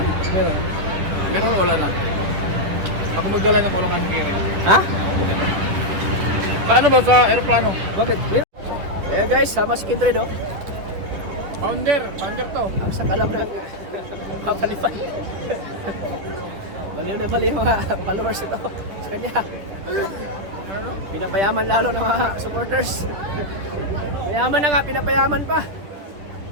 Meron. Meron wala na. Ako magdala ng kulungan ng giring. Ha? Paano ba sa aeroplano? Bakit? Eh guys, sama si Kindred oh. Founder to. Ang sakalam ng mapalipad. Baliw na baliw yung mga followers ito sa kanya. Pinapayaman lalo ng mga supporters. Mayaman na nga, pinapayaman pa.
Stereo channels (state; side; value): late; left; 10 ms